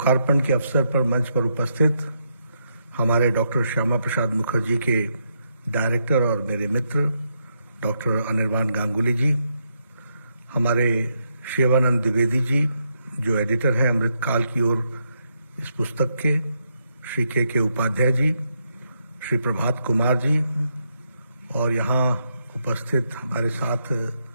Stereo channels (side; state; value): both; inverted; correlation -0.79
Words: के अवसर पर मंच पर उपस्थित हमारे डॉक्टर श्यामा प्रसाद मुखर्जी के डायरेक्टर और मेरे मित्र डॉक्टर अनिर्बान गांगुली जी, हमारे शिवानंद द्विवेदी जी जो एडिटर हैं अमृतकाल की ओर इस पुस्तक के, श्री के उपाध्याय जी, श्री प्रभात कुमार जी और यहाँ उपस्थित हमारे साथ